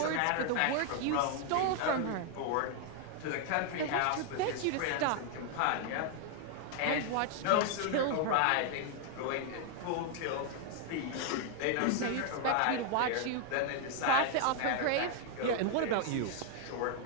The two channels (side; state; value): both; different; correlation 0.00